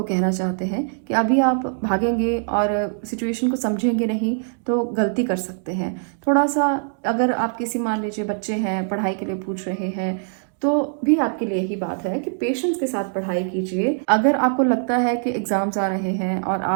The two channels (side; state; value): left; silent; digital silence